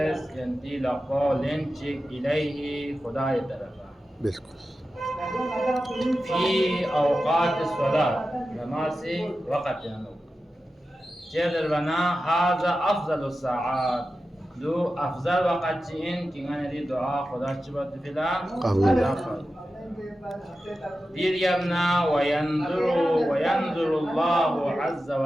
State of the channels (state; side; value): normal; both; correlation 0.92